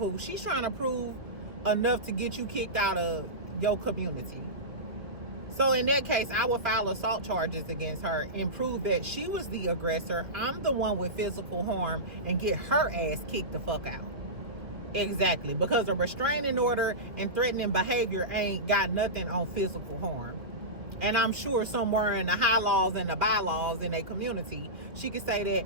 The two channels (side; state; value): left; late; 2.1 ms